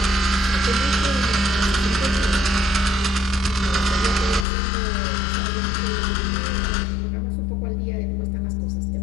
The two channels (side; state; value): right; drops out; at 4.5 s